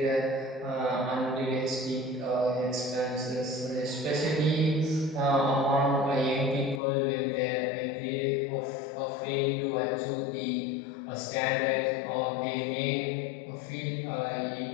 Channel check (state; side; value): drops out; right; at 6.8 s